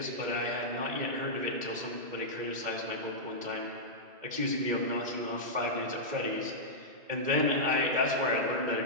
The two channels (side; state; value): left; late; 2.1 ms